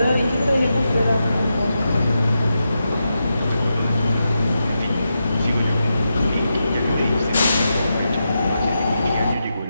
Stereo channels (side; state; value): both; inverted; correlation -0.87